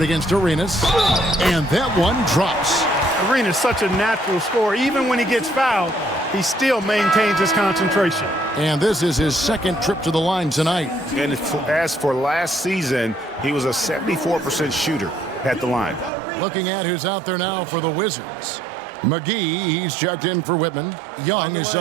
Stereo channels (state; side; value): drops out; left; at 16.1 s